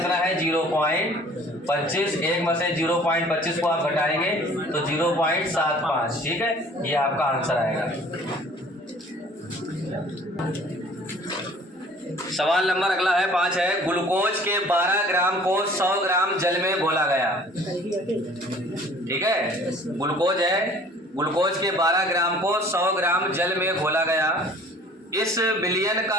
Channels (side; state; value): both; normal; correlation 0.51